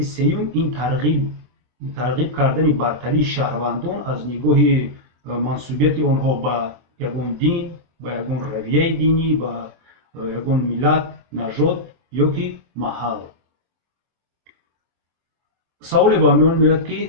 сеюм ин тарғиб кардани бартарии шаҳрвандон аз нигоҳи мансубияти онҳо ба ягон дин, ба ягон равияи динӣ, ба ягон миллат, нажод ё ки маҳал. саволе ба миён меояд, ки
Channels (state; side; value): late; left; 24 ms